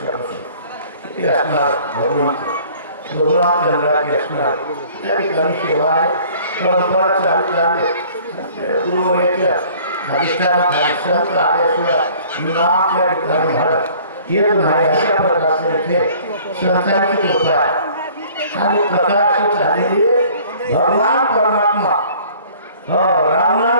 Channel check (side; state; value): both; inverted; correlation -0.52